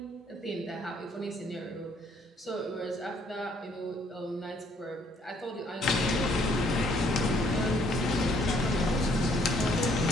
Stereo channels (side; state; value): both; normal; correlation 0.65